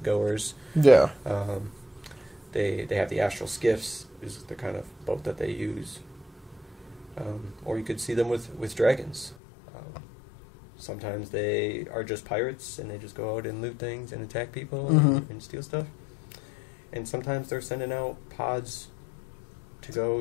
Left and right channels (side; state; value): right; drops out; at 9.3 s